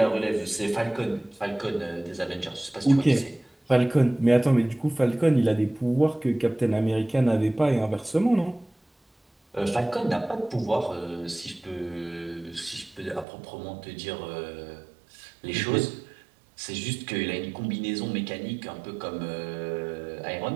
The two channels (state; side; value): drops out; left; at 13.2 s